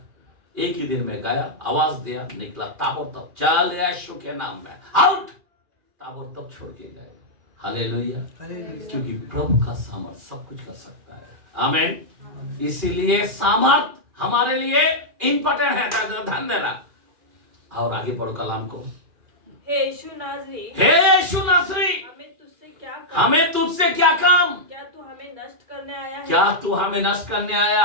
एक ही दिन में गया, आवाज दिया, निकला ताबड़तोड़, चल यीशु के नाम में आउट, ताबड़तोड़ छोड़ के गए। हालेलुया। क्योंकि प्रभु का सामर्थ सब कुछ कर सकता है। आमीन। इसीलिए सामर्थ हमारे लिए इंपॉर्टेंट है। ध्यान देना। और आगे पढ़ो कलाम को। हे यीशु नासरी, हमें तुझसे क्या काम? क्या तू हमें नष्ट करने आया है? क्या तू हमें नष्ट करने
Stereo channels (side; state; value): left; late; 2.4 ms